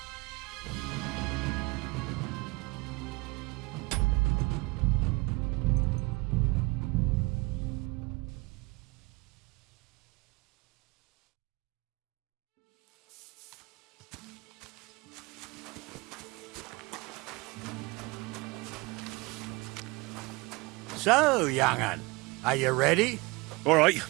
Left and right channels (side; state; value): left; quieter; 24.4 dB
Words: So, young'un, are you ready? All right,